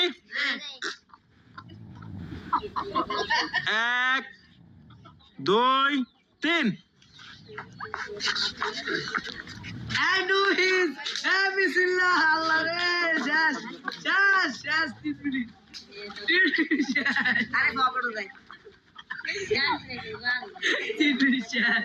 1 2 3। বিসমিল্লাহ আল্লাহ রে, শেষ শেষ শেষ 3 মিনিট। আরে বাবাড়ো যাই 3 মিনিট শেষ।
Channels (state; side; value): identical; both; correlation 1.00